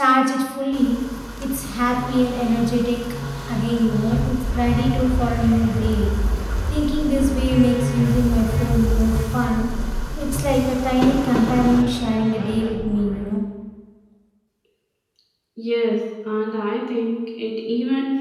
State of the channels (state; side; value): identical; both; correlation 1.00